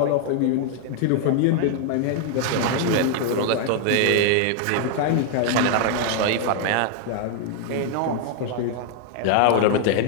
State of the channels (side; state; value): both; different; correlation 0.00